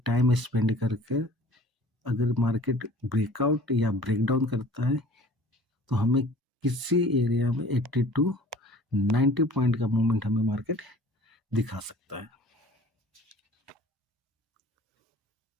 स्पेंड करके अगर मार्केट ब्रेकआउट या ब्रेकडाउन करता है, तो हमें किसी एरिया में 80 टू 90 पॉइंट का मूवमेंट हमें मार्केट दिखा सकता है।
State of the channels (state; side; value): normal; both; correlation 0.48